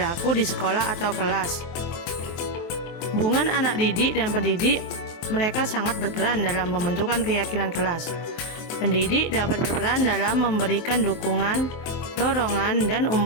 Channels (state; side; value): late; right; 23 ms